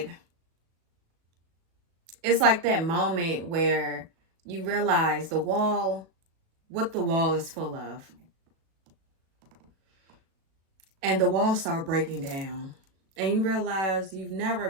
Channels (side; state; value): left; late; 37 ms